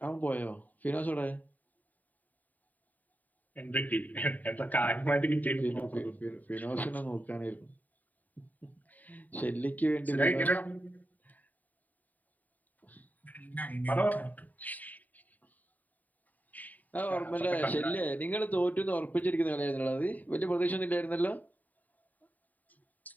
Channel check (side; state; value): right; late; 0.080 ms